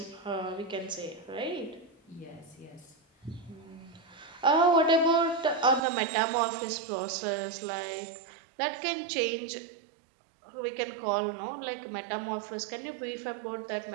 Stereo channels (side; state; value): left; drops out; at 5.8 s